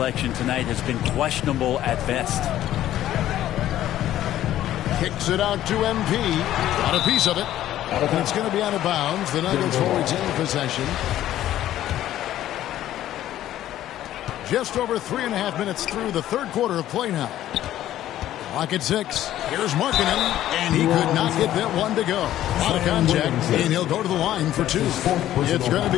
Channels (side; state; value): right; quieter; 12.9 dB